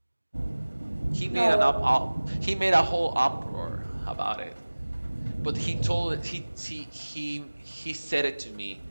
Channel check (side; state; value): both; inverted; correlation -1.00